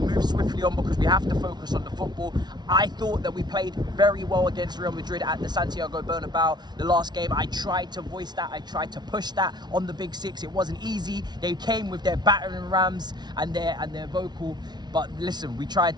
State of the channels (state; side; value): late; left; 0.20 ms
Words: swiftly on because we have to focus on the football. I thought that we played very well against Real Madrid at the Santiago Bernabeu the last game. I tried to voice that, I tried to push that on the big six. It wasn't easy. They came with their battering rams and their vocal. But listen, we tried